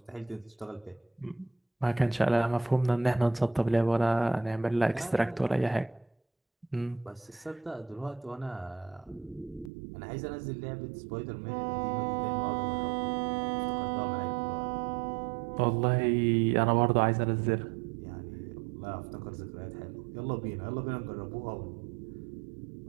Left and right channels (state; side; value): drops out; left; at 9.7 s